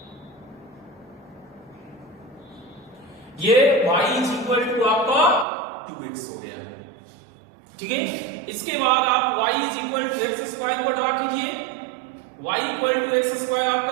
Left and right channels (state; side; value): drops out; left; at 5.5 s